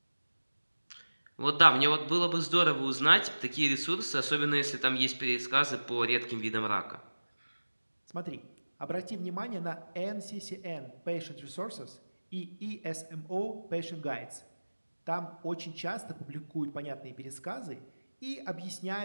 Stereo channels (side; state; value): both; inverted; correlation -1.00